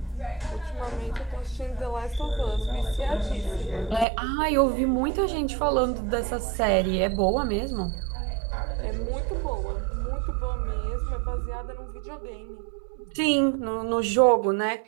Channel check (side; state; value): left; drops out; at 4.0 s